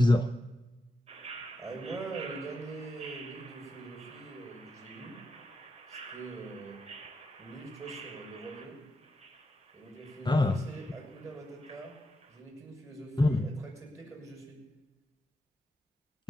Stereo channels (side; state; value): both; normal; correlation 0.87